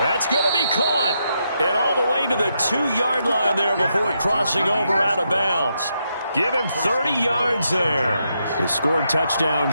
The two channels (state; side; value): inverted; both; correlation -0.81